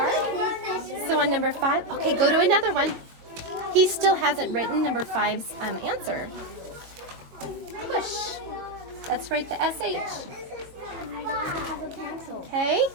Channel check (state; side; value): late; left; 22 ms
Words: So on number 5, okay, go to another one. He still hasn't written number 5's answer. Push. Let's write the SH. Okay,